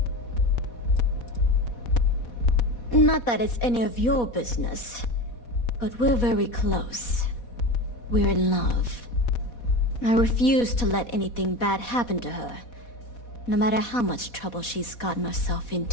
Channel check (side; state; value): right; late; 4.1 ms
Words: Not that it's any of your business, but we're very close. We're in love. I refuse to let anything bad happen to her, no matter how much trouble she's gotten herself